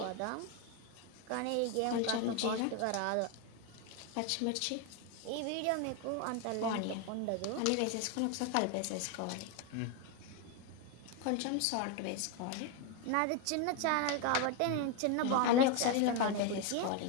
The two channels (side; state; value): both; different; correlation 0.02